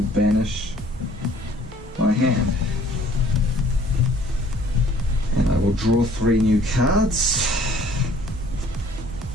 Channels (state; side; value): normal; both; correlation 0.56